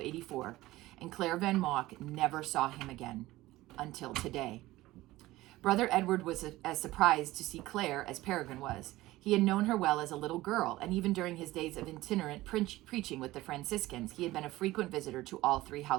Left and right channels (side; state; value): left; quieter; 17.7 dB